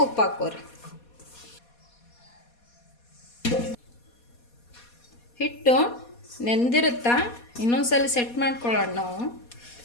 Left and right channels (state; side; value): late; right; 4.2 ms